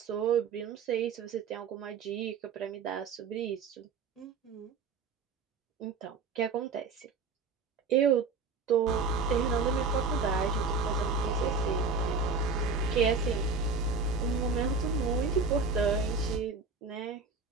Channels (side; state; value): left; quieter; 4.5 dB